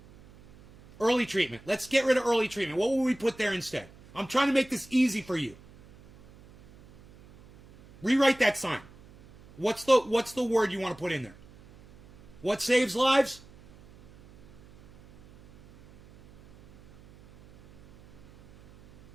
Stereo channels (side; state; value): right; noise; hum, 24 dB below the sound